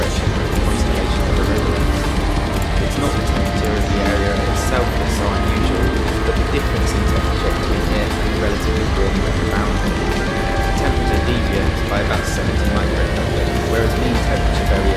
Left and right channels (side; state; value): both; identical; correlation 1.00